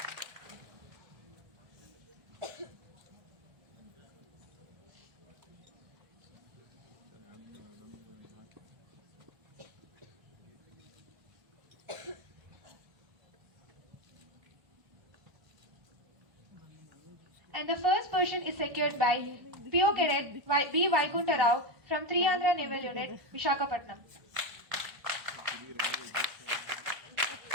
And the first position is secured by PO Cadet B. Vaikunta Rao from 3 Andhra Naval Unit, Vishakhapatnam.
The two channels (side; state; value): left; late; 1.4 ms